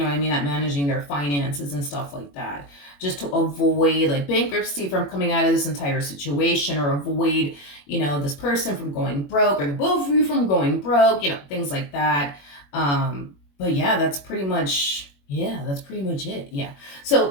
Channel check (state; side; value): late; right; 21 ms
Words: what I mean? At managing their finances and stuff like that. Just to avoid like bankruptcy from coming out of this entire situation, or avoid, you know, this person from going broke, or the both of you from going broke, you know, things like that. But yeah, that's pretty much it. Yeah. So